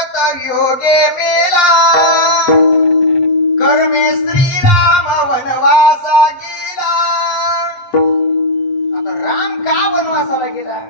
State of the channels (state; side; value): late; right; 7.7 ms